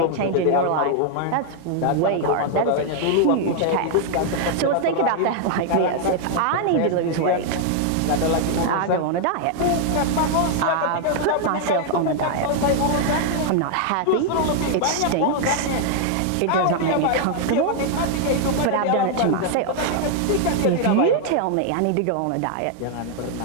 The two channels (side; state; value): both; different; correlation 0.00